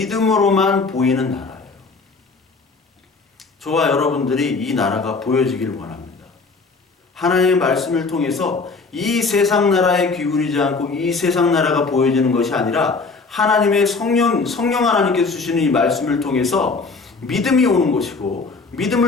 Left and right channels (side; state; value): right; quieter; 4.2 dB